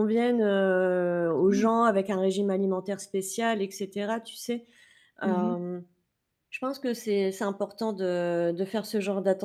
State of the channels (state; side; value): identical; both; correlation 1.00